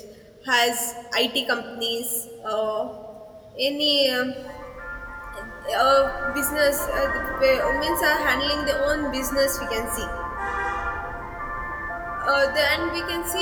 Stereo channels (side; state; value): both; identical; correlation 1.00